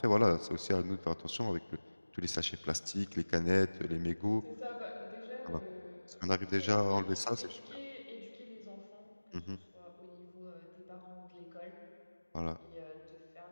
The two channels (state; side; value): inverted; both; correlation -1.00